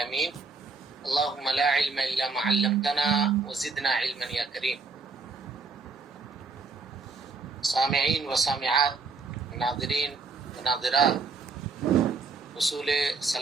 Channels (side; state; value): left; quieter; 4.4 dB